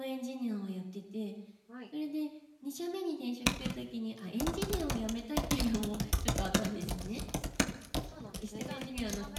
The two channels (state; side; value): identical; both; correlation 1.00